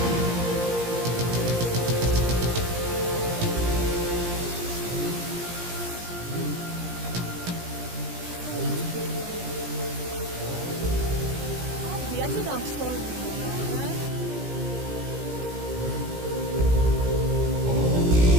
Oh, sorry, Mama. I'm so sorry. I'm so sorry. Should I help you to pick it or you want? Obi, I said I'm sorry now,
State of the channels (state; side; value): late; left; 17 ms